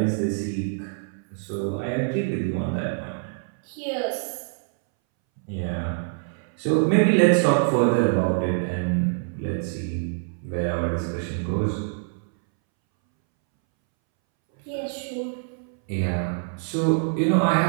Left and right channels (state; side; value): silent; left; 62 dB below the other